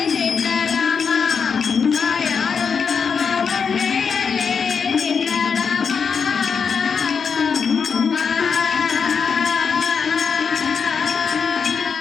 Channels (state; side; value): quieter; right; 6.0 dB